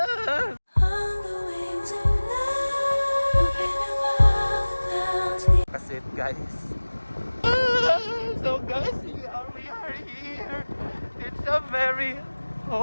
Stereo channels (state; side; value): inverted; both; correlation -1.00